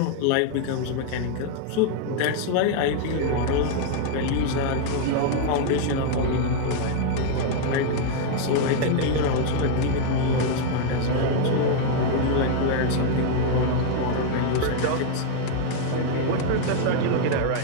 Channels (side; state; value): both; different; correlation 0.00